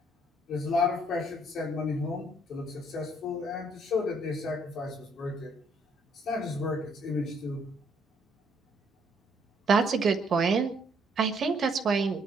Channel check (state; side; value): normal; both; correlation 0.67